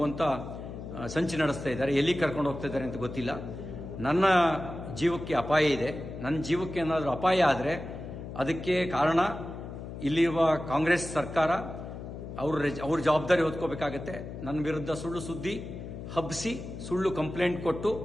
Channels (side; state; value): left; noise; hum, 10 dB below the sound